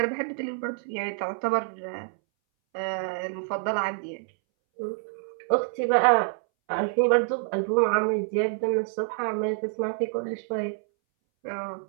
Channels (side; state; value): left; silent; 60 dB below the other